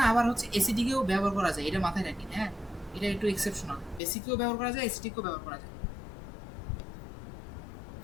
আবার হচ্ছে অ্যাসিডিকেও ব্যবহার করা যায়, এটা মাথায় রাখেন। হ্যাঁ, এটা একটু এক্সেপশনাল, বেসিকেও ব্যবহার করা যায়, অ্যাসিডিকেও ব্যবহার করা যায়।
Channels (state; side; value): drops out; right; at 4.0 s